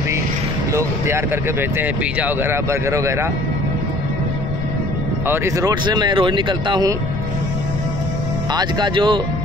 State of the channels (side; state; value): left; noise; rumble, 4 dB below the sound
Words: लोग तैयार करके भेजते हैं, पिज़्ज़ा वगैरह, बर्गर वगैरह। और इस रोड से मैं रोज़ निकलता हूँ। आज का जो